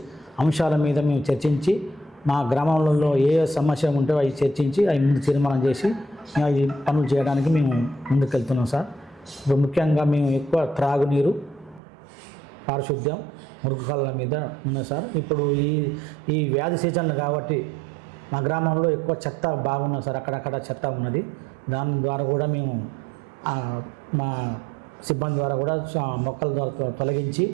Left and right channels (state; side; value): drops out; left; at 11.8 s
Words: అంశాల మీద మేము చర్చించి మా గ్రామంలో ఏ సమస్య ఉంటే అవి చర్చించి అవి ముందు తీర్మానం చేసి అవి పనులు చేయడానికి మేము ముందుకెళ్తున్నాం సార్. ఇప్పుడు ముఖ్యంగా మేము ఎక్కువ త్రాగునీరు, పారిశుద్ధ్యం, మురుగు కాలువల మీద ఉన్నాయి సార్. ఇప్పుడు ఈ వ్యాధి సీజన్లు కాబట్టి మా గ్రామంలో ఎక్కువ చెత్త బాగున్నది సార్. అక్కడక్కడ చెత్త ఉన్నది. దాని ద్వారా కూడా మేము మా సిబ్బంది ద్వారా కూడా మొక్కల ద్వారా తొలగించి